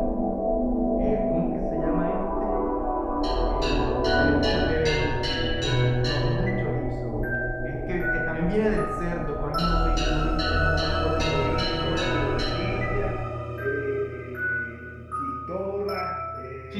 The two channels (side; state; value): both; identical; correlation 1.00